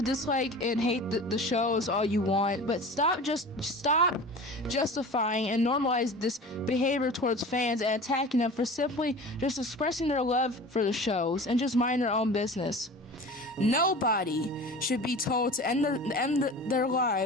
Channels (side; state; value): both; normal; correlation 0.37